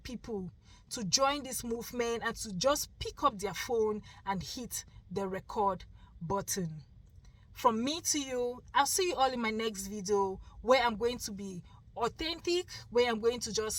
to join this movement and to just pick up their phone and hit the record button. From me to you, I'll see you all in my next video, where I'm going to be authentic, where I'm going to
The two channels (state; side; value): identical; both; correlation 1.00